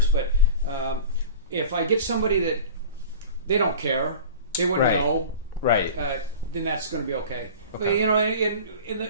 but if I get somebody that they don't care, they wouldn't Right. know, Right. then that's going to be okay. But Okay. you know,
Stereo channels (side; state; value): both; inverted; correlation -0.37